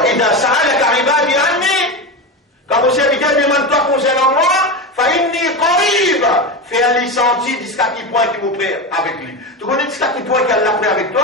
idha sa'alaka ibadi anni, quand vos serviteurs demandent toi concernant moi, fa inni qarib, fait un senti jusqu'à qui point qui m'ont pris avec lui. Tu connais jusqu'à qui point qu'elle l'a pris avec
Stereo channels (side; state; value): both; normal; correlation 0.19